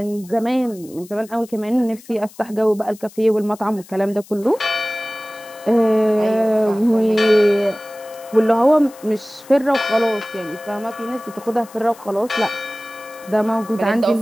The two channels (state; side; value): noise; left; hiss, 22 dB below the sound